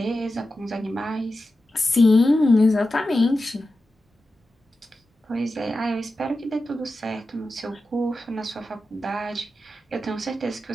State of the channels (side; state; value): both; normal; correlation 0.92